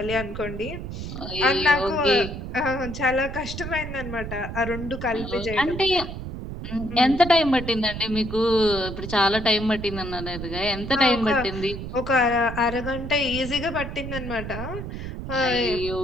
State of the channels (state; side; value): noise; right; rumble, 7 dB below the sound